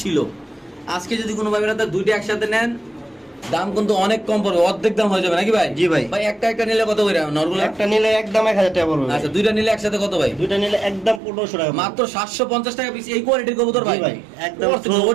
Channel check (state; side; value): drops out; left; at 11.2 s